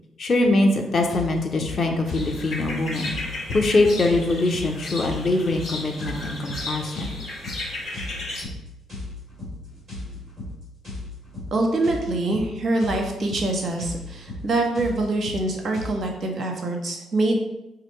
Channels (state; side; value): normal; both; correlation 0.76